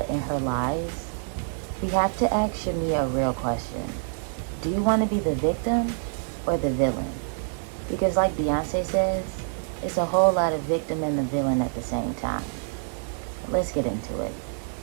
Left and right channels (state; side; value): silent; left; digital silence